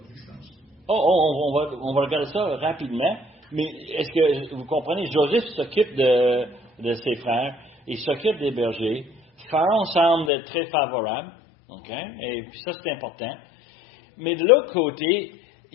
je pense. On va regarder ça rapidement. Mais est-ce que vous comprenez, Joseph s'occupe de ses frères, il s'occupe des bergers. Pharaon semble être très favorable, okay? Et puis ça c'est important. Mais de l'autre côté,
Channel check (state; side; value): drops out; right; at 10.3 s